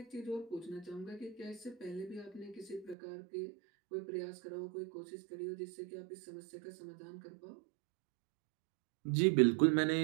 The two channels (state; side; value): drops out; left; at 3.0 s